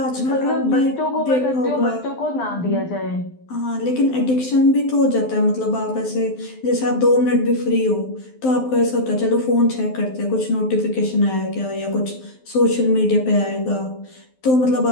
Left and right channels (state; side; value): late; right; 12 ms